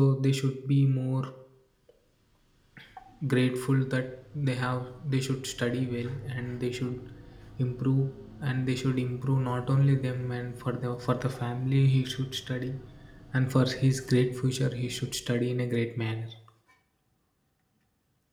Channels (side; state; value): both; identical; correlation 1.00